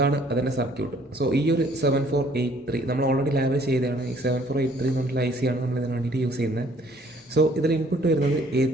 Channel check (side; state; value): both; normal; correlation 0.60